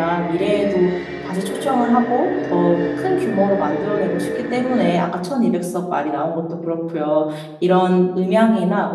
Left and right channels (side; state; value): both; identical; correlation 1.00